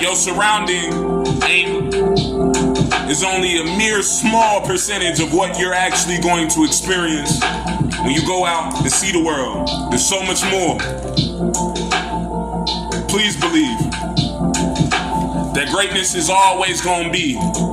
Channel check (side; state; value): both; identical; correlation 1.00